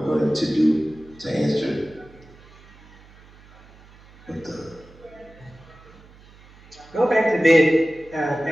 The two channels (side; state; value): right; noise; hum, 24 dB below the sound